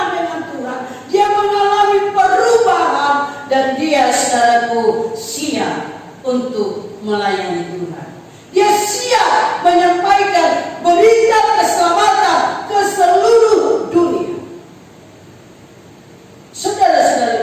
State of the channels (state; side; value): identical; both; correlation 1.00